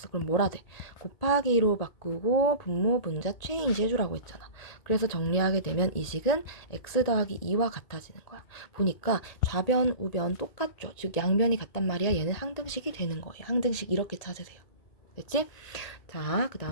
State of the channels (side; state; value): right; late; 1.8 ms